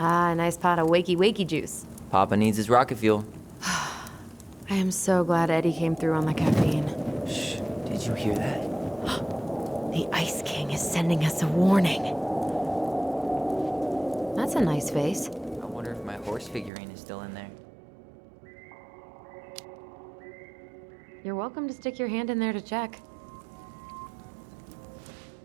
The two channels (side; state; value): left; drops out; at 16.7 s